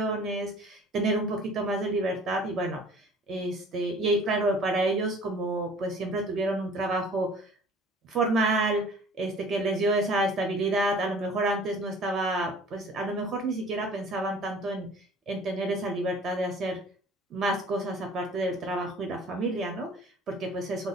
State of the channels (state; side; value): normal; both; correlation 0.49